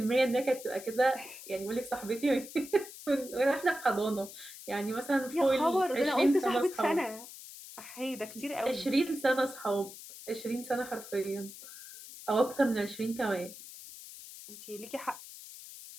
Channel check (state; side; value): noise; left; hiss, 14 dB below the sound